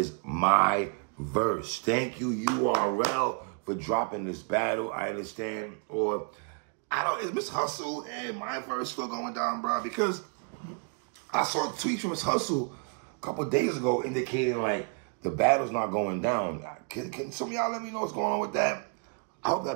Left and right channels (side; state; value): left; quieter; 37.6 dB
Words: My Verse. Thank you, URL, for dropping this battle. I understand. Or, I don't, is Miss Hustle and My Verse still going down, bro? Because I saw a tweet from Miss Hustle a couple of days ago indicating, like, the battle's not going down. Can some of y'all let me know what's going on with that? I hope